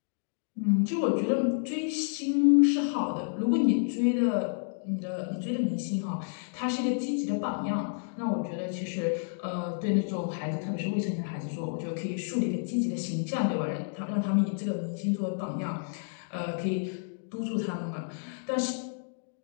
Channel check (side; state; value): right; silent; digital silence